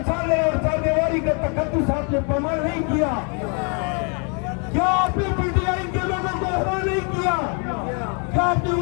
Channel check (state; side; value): quieter; right; 38.0 dB